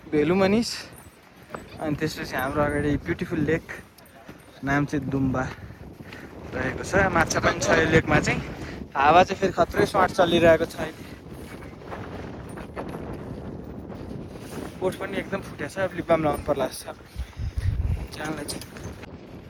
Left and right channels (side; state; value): both; identical; correlation 1.00